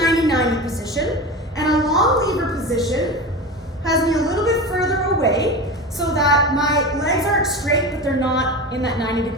position, and a long lever position has me a little bit further away so that my legs aren't straight, but they're not in that 90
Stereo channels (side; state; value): both; normal; correlation 0.27